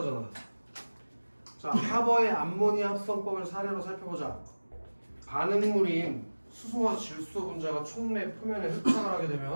자, 하버의 암모니아 합성법을 사례로 살펴보자. 반응물인 수소와 질소 분자가 촉매 표면에 흡착을 하게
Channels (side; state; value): both; inverted; correlation -1.00